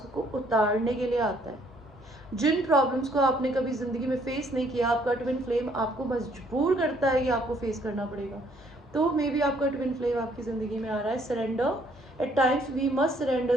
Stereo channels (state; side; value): normal; both; correlation 0.65